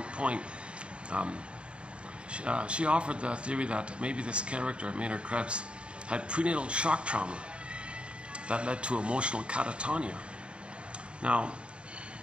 point. She offered the theory that maybe this character, Maynard Krebs, had prenatal shock trauma that led to emotional catatonia. Now,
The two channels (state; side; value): late; left; 0.056 ms